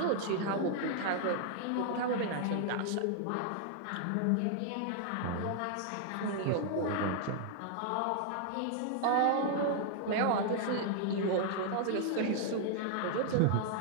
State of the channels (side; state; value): both; different; correlation 0.00